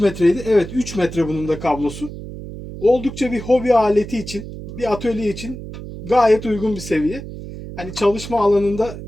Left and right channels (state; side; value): noise; right; hum, 11 dB below the sound